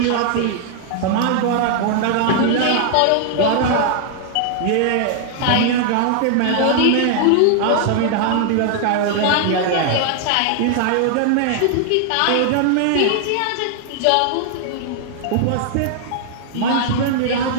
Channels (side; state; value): both; different; correlation 0.00